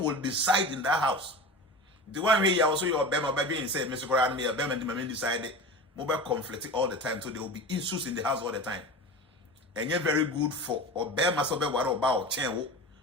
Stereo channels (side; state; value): both; normal; correlation 0.31